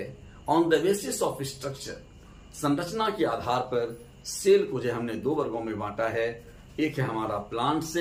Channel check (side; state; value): both; identical; correlation 1.00